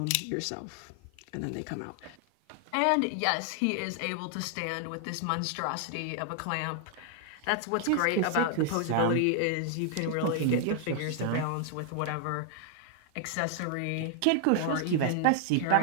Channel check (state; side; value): different; both; correlation 0.00